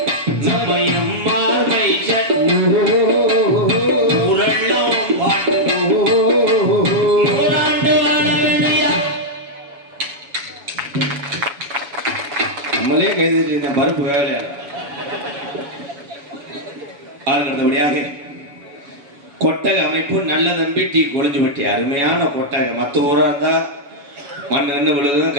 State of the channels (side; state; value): left; late; 7.1 ms